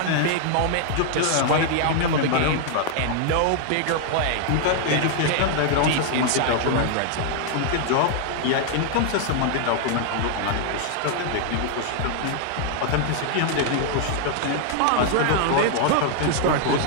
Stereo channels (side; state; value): both; different; correlation 0.00